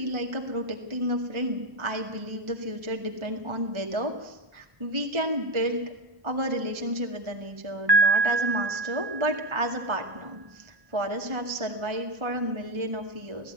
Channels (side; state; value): left; late; 1.3 ms